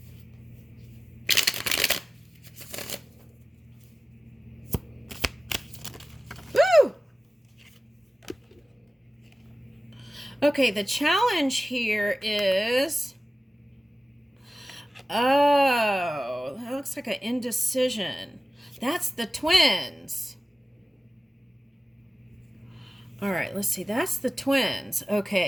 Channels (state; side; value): normal; both; correlation 0.97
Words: Okay, the challenge here is, oh, that looks like an indecision. That's the twins. All right, let's see. That's the twins.